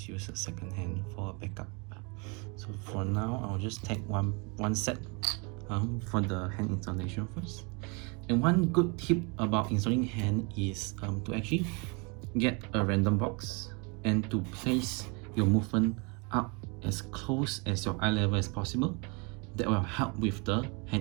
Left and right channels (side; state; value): left; quieter; 31.7 dB